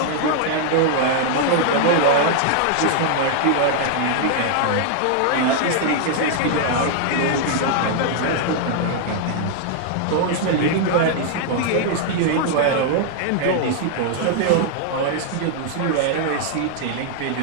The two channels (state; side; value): different; both; correlation -0.01